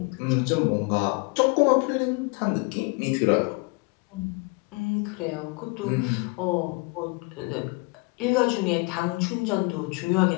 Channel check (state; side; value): quieter; right; 29.2 dB